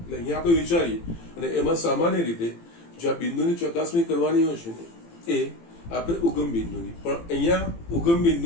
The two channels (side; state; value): right; late; 18 ms